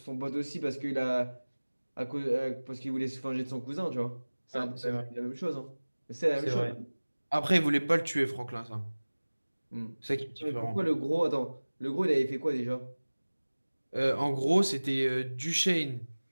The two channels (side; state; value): both; inverted; correlation -1.00